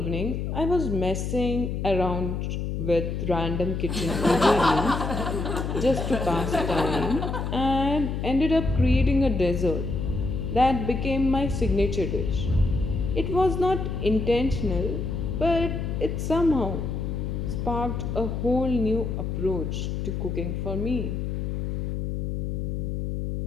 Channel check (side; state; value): left; noise; hum, 2 dB below the sound